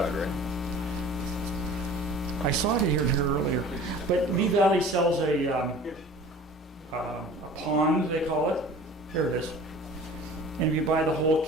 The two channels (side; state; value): both; normal; correlation 0.44